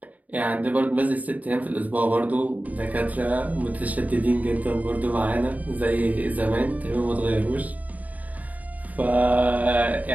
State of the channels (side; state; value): left; late; 0.074 ms